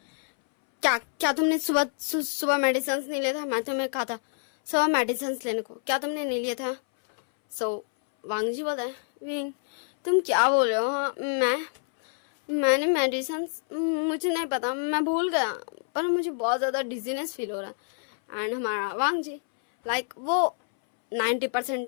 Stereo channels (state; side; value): silent; right; 60 dB below the other